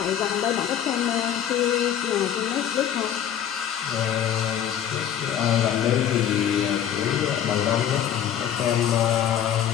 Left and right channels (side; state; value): right; quieter; 9.7 dB